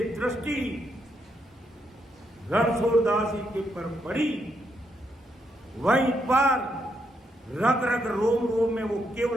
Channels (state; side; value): normal; both; correlation 0.78